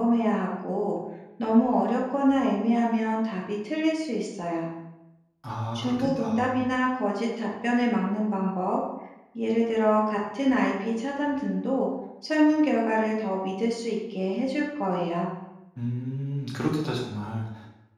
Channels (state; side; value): identical; both; correlation 1.00